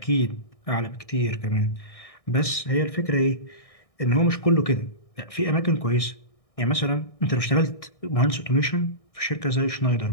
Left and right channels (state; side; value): late; right; 1.6 ms